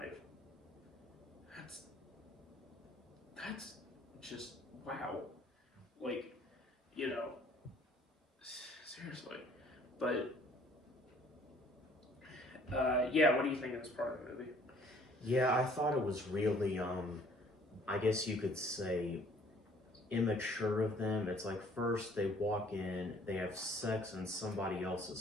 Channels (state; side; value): normal; both; correlation 0.58